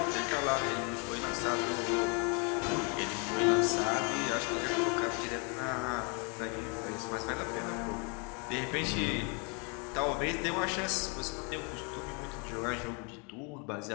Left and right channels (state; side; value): quieter; right; 34.6 dB